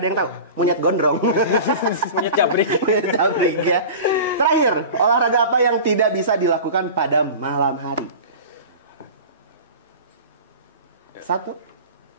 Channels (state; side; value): inverted; both; correlation -0.35